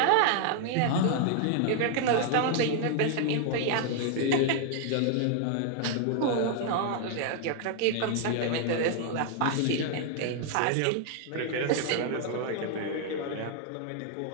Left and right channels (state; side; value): different; both; correlation 0.00